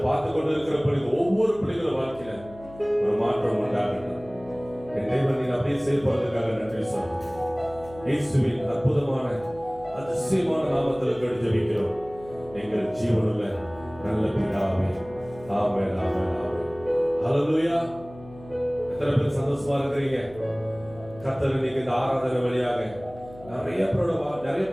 பார்த்து கொண்டு இருக்கிற பிள்ளைகள் ஒவ்வொரு பிள்ளைகளும் வாழ்க்கையில ஒரு மாற்றம் உண்டாகட்டும். என் தெய்வம் நீ அப்படியே செயல்படுறதுக்காக நன்றி சொல்றேன். இயேசுவின் அற்புதமான அதிசயமான நாமத்தில் கேட்டு ஜெபிக்கிறோம் எங்கள் ஜீவனுள்ள நல்ல பிதாவே. ஆமென், ஆமென், ஆமென். ஹல்லேலூயா. எத்தனை பேர் சந்தோஷமா இருக்கிறீங்க? கர்த்தர் இன்னைக்கு இந்த ஆராதனை வழியாக நிறைய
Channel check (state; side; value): noise; left; hum, 19 dB below the sound